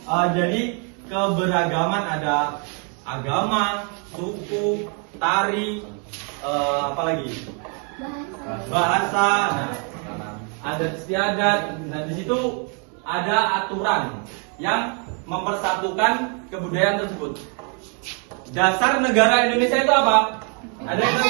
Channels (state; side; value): quieter; left; 38.8 dB